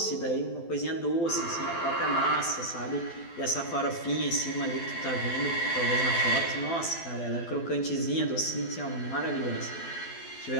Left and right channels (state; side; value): late; right; 12 ms